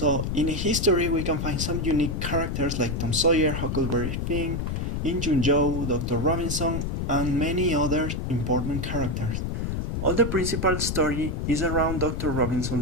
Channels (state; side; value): noise; left; rumble, 2 dB below the sound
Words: in history, we can find some unique characters like Tom Sawyer, Huckleberry Finn, Injun Joe, Dr. Robinson, and many other important characters. All the principal story is around Dr.